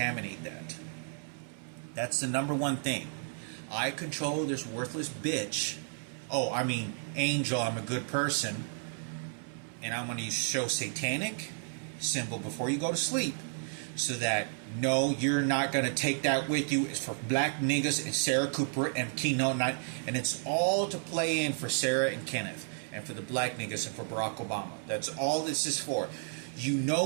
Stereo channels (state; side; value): silent; left; 56 dB below the other